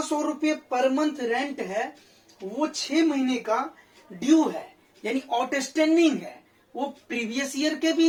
रुपये पर मंथ रेंट है वो 6 महीने का ड्यू है, यानी आउटस्टैंडिंग है। वो प्रीवियस ईयर के भी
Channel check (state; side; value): identical; both; correlation 1.00